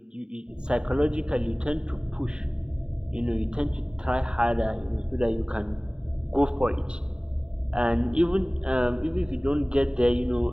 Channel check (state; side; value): late; left; 0.049 ms